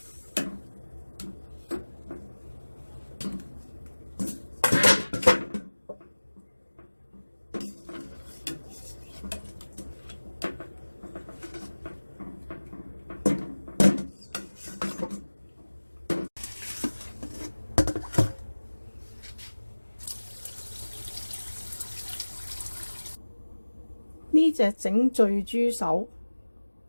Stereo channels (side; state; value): both; inverted; correlation -1.00